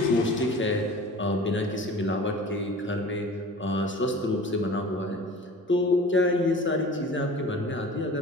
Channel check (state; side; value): normal; both; correlation 0.41